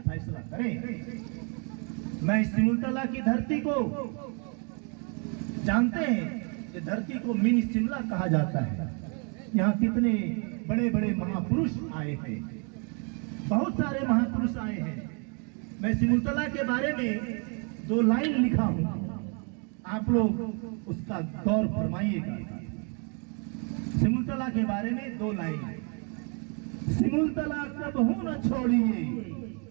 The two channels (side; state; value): left; quieter; 36.9 dB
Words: फैसला करें। मैं सिमुलतला की धरती को जानते हैं कि धरती को मिनी शिमला कहा जाता है। यहाँ कितने बड़े बड़े महापुरुष आए हैं, बहुत सारे महापुरुष आए हैं। मैं सिमुलतला के बारे में 2 लाइन लिखा हूं, आप लोग उसका गौर फरमाइएगा। सिमुलतला के बारे में 2 लाइन। सिमुलतला कबहू न छोड़िए,